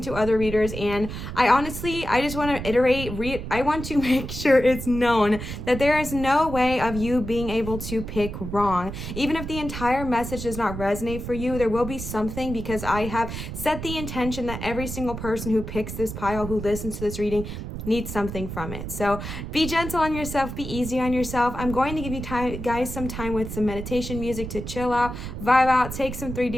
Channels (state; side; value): noise; right; rumble, 7 dB below the sound